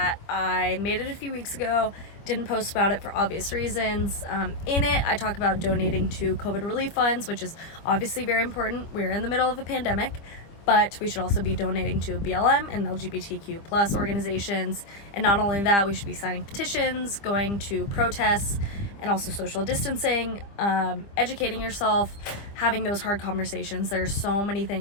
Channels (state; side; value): late; right; 25 ms